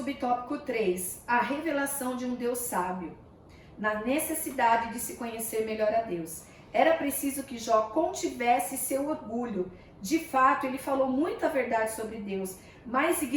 3. A revelação de um Deus sábio. Na necessidade de se conhecer melhor a Deus. Era preciso que Jó contivesse seu orgulho. De fato, ele falou muita verdade sobre Deus, mas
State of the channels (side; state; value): both; identical; correlation 1.00